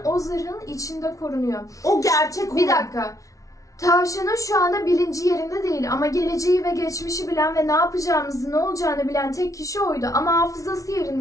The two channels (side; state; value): right; late; 0.16 ms